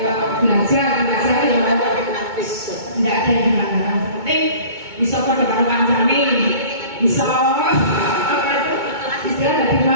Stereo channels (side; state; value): left; late; 2.2 ms